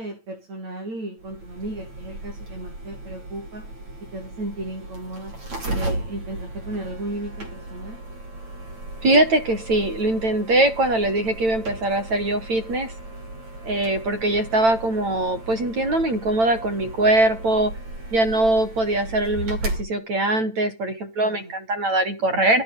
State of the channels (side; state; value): left; late; 8.9 ms